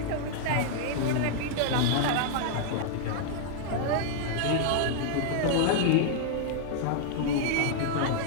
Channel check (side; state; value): both; different; correlation 0.00